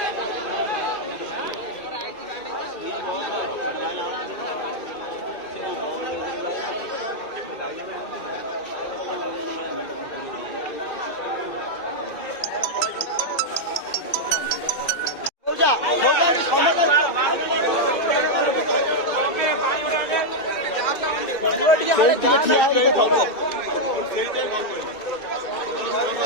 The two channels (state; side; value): late; right; 1.7 ms